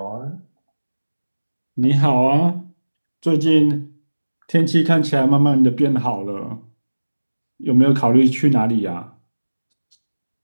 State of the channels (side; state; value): both; inverted; correlation -1.00